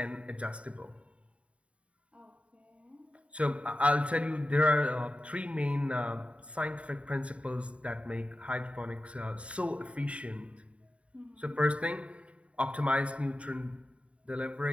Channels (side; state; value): left; late; 0.063 ms